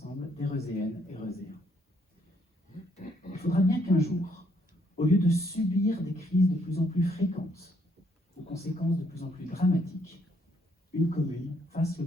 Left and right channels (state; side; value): normal; both; correlation 0.70